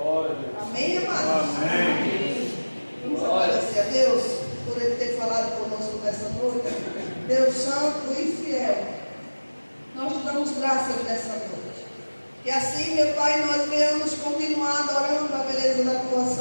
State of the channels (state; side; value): inverted; both; correlation -1.00